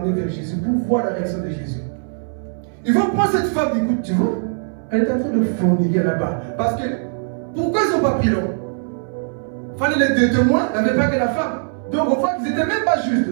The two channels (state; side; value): silent; left; 65 dB below the other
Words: vers Jésus, pour voir la réaction de Jésus. Ils vont prendre cette femme, écoute, tu vois, elle est en train de forniquer là-bas. Parce que, pourquoi ils n'ont pas pris l'homme? Il fallait les deux témoins, il n'y avait pas que la femme. Donc, on voit qu'ils n'étaient même pas